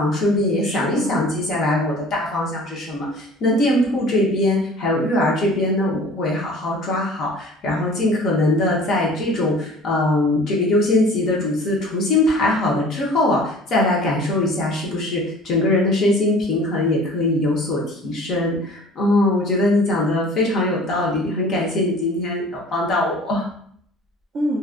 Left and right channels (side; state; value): both; normal; correlation 0.46